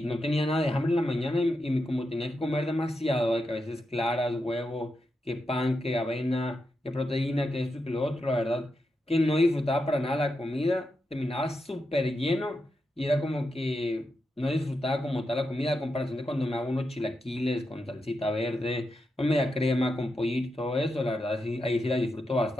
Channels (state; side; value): normal; both; correlation 0.86